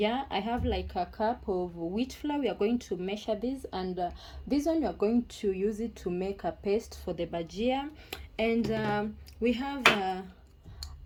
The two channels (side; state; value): both; identical; correlation 1.00